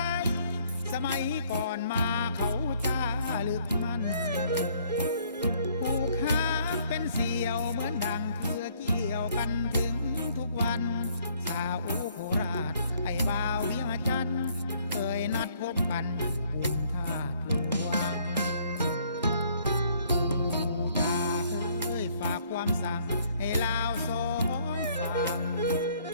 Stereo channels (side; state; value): both; inverted; correlation -0.63